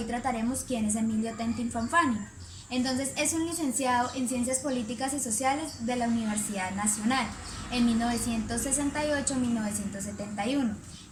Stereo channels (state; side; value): identical; both; correlation 1.00